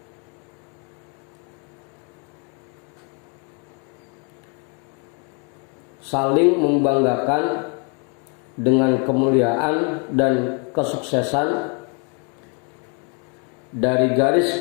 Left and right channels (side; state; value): right; quieter; 37.1 dB